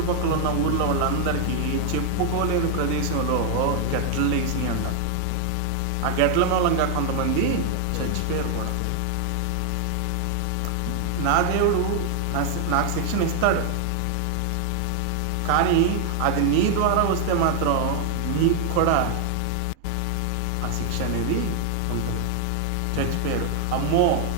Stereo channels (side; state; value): both; different; correlation 0.00